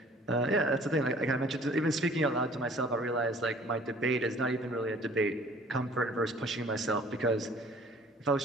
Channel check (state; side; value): normal; both; correlation 0.52